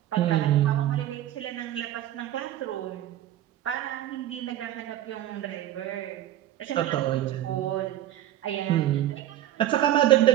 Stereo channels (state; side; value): quieter; left; 12.9 dB